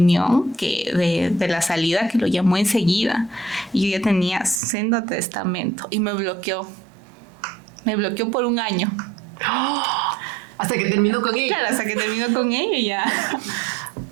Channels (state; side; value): drops out; left; at 4.6 s